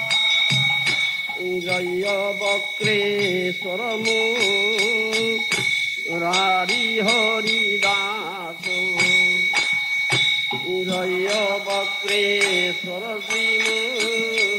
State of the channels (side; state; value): both; identical; correlation 1.00